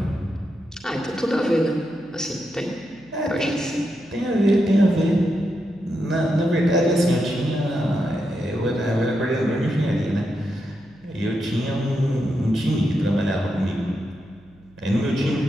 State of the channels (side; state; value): right; noise; hum, 28 dB below the sound